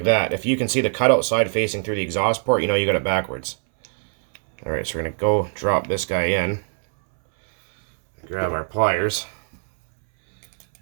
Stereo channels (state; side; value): silent; left; 64 dB below the other